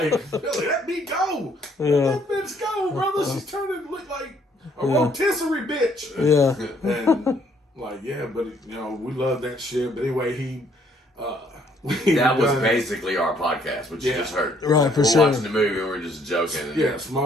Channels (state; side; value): normal; both; correlation 0.66